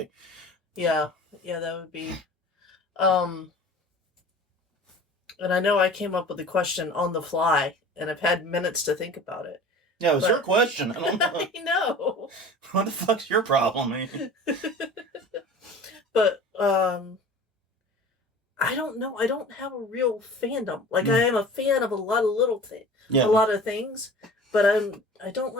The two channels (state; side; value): normal; both; correlation 0.41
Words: Yeah, that would be. And I know I came up with the question on the fly, and I've had minutes to think about it. Yeah, it was your question. I don't know. I know. What the fuck's your problem, man? But I don't know. I don't have a real fandom. Like I am a fan of a lot of a lot of things, but I don't